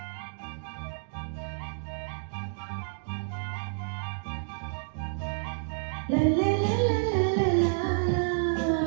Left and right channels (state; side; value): silent; left; digital silence